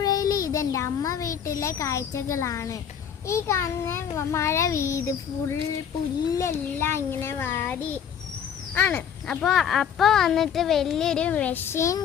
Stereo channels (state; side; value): quieter; right; 8.3 dB